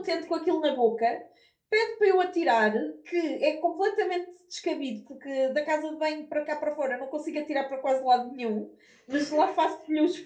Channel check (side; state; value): both; identical; correlation 1.00